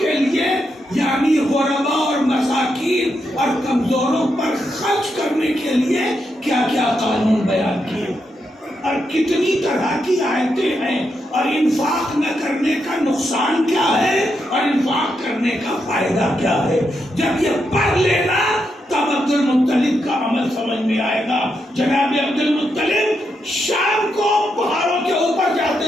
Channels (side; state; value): both; normal; correlation 0.83